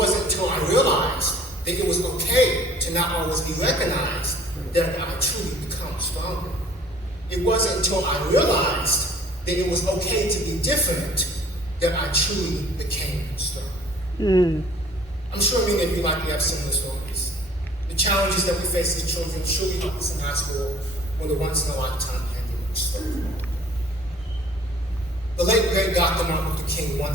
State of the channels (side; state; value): both; normal; correlation 0.53